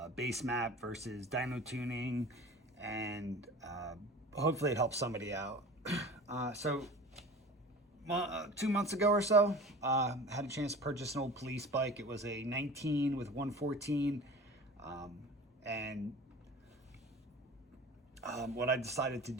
base map versus dyno tuning, and hopefully it helps somebody out. So 2 months ago or so, had a chance to purchase an old police bike. It was a 19 with 114, and what I decided to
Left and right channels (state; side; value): normal; both; correlation 0.39